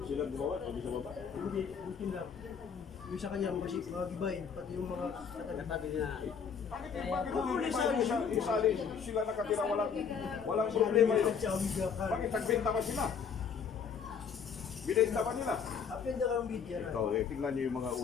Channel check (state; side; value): quieter; right; 6.6 dB